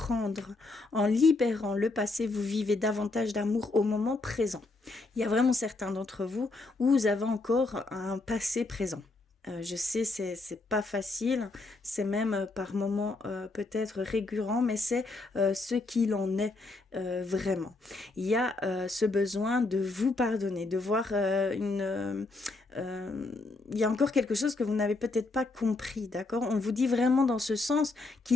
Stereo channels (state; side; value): quieter; right; 3.3 dB